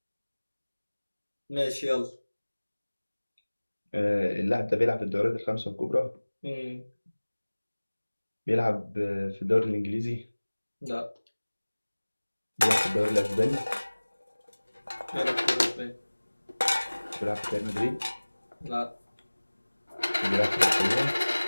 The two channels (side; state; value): both; inverted; correlation -1.00